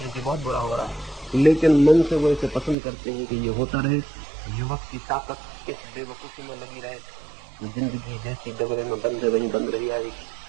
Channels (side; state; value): left; drops out; at 2.8 s